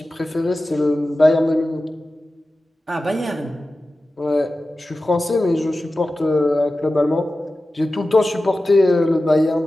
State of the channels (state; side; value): normal; both; correlation 0.95